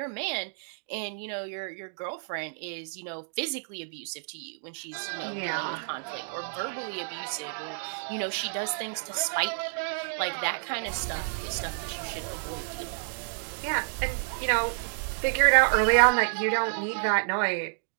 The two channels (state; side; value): silent; left; digital silence